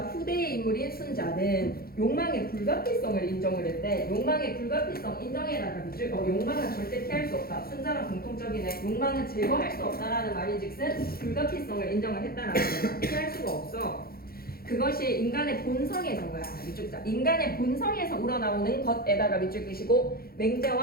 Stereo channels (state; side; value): late; right; 0.44 ms